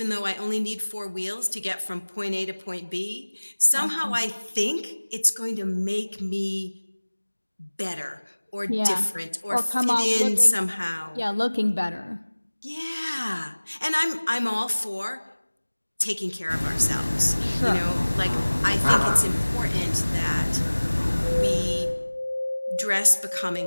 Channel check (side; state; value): both; inverted; correlation -1.00